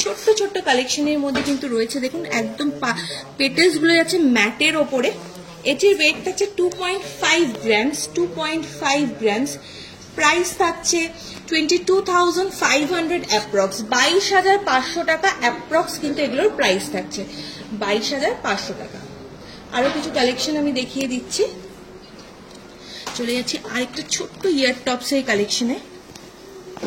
ছোট্ট ছোট্ট কালেকশনের মধ্যে কিন্তু রয়েছে। দেখুন একদম পেটেলস গুলো যাচ্ছে ম্যাটের ওপরে। এটির ওয়েট থাকছে 2.5 গ্রামস, 2.5 গ্রামস। প্রাইস থাকছে 22,500 অ্যাপ্রক্স, 22,500 টাকা অ্যাপ্রক্স কিন্তু এগুলোর প্রাইস থাকছে 22,500 টাকা। আরো কিছু কালেকশন আমি দেখিয়ে দিচ্ছি। চলে যাচ্ছি আরেকটা ছোট্ট ইয়ার টপসের কালেকশনে।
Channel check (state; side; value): identical; both; correlation 1.00